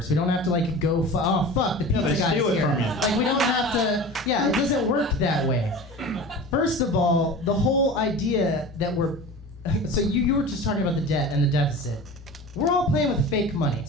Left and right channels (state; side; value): normal; both; correlation 0.35